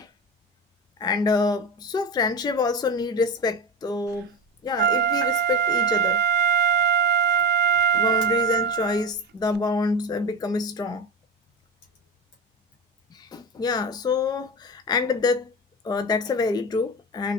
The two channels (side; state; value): both; normal; correlation 0.22